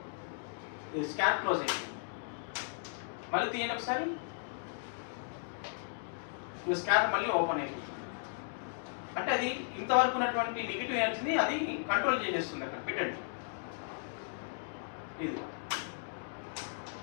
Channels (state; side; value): silent; right; digital silence